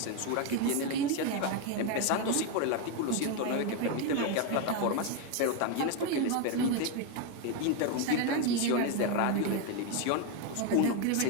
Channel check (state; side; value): different; both; correlation 0.02